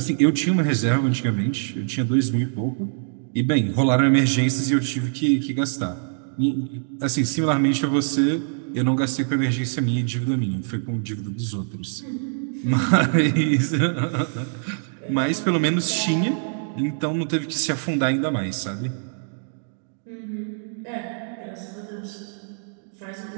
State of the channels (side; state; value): left; silent; digital silence